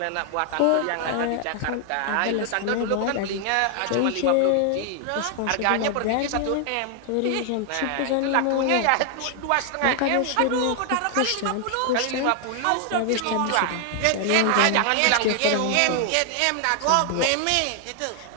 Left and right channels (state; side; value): different; both; correlation 0.00